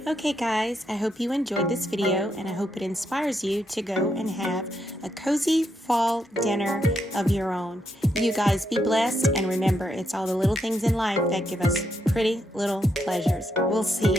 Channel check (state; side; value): normal; both; correlation 0.79